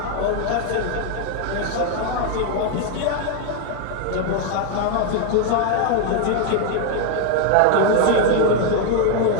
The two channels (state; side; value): different; both; correlation 0.00